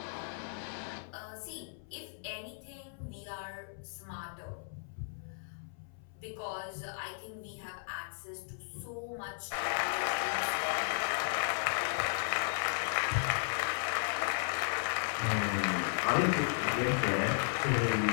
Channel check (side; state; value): right; silent; 54 dB below the other